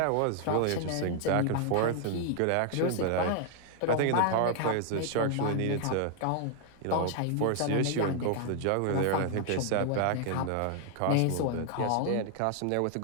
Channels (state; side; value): different; both; correlation 0.00